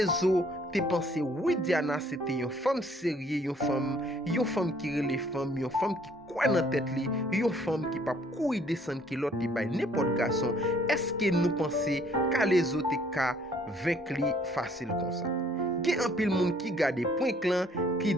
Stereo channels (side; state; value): both; normal; correlation 0.61